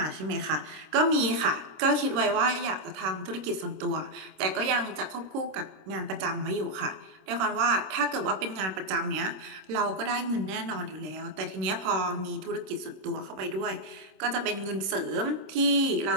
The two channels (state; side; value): late; left; 26 ms